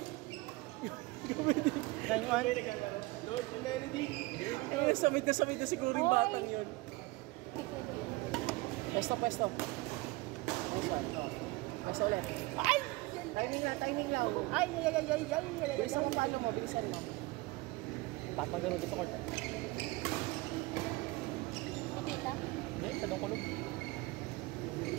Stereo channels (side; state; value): left; quieter; 21.9 dB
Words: Yan one. Lord Melody. Here we go. Samid na siguro yung batang yun. Pesto. Nice one. Oh. Pesto ulit. Ay! Timing lang. Ay! Bilisan mo paano mo, bilisan mo. Patmagano doon sa court. Pitita. Hindi, tanong kulog.